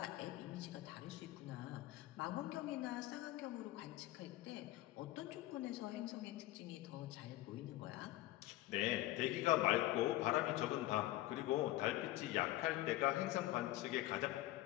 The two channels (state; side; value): quieter; right; 16.6 dB